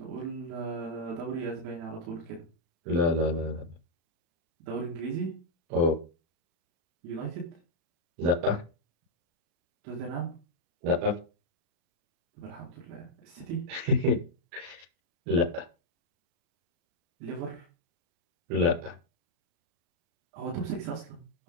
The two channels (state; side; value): late; left; 36 ms